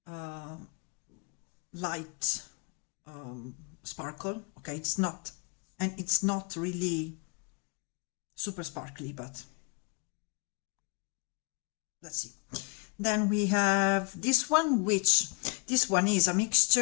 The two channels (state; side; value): quieter; right; 34.3 dB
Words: light sparkle. Okay, it's not, and it's not really super sparkly, but let's see. Then we have this one, which this one is a